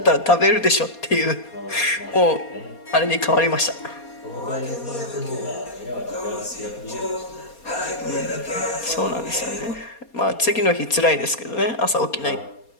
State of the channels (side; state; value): right; late; 4.3 ms